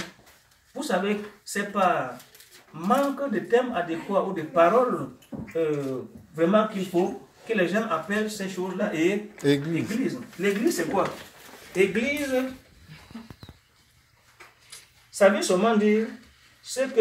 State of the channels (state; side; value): identical; both; correlation 1.00